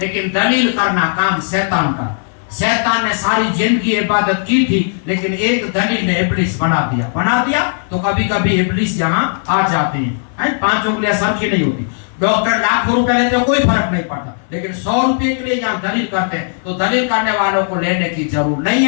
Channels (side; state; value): right; silent; 67 dB below the other